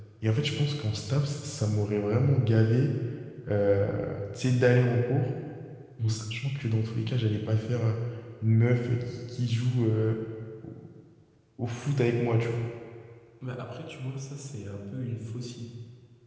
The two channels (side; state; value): both; identical; correlation 1.00